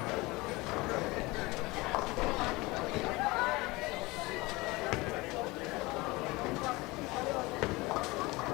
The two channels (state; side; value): quieter; right; 22.6 dB